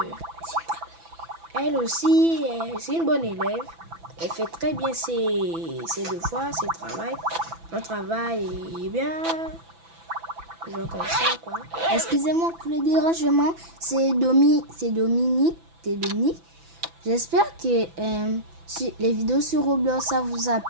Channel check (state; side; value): late; left; 6.0 ms